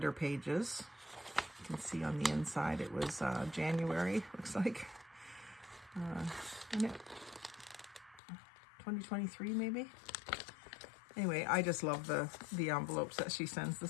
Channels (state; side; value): drops out; right; at 8.2 s